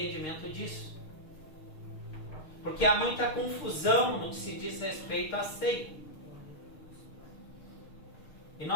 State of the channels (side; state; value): right; late; 6.5 ms